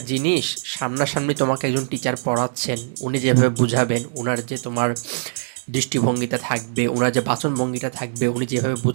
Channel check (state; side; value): silent; left; digital silence